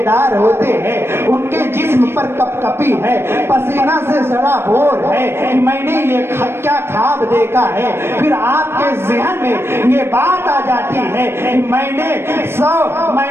ہوتے ہیں ان کے جسم پر کپ کپی ہے، پسینہ سے سڑا بور ہے کہ میں نے یہ کیا خواب دیکھا ہے۔ پھر آپ کے ذہن میں یہ بات آ جاتی ہے کہ میں نے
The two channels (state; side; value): late; left; 0.12 ms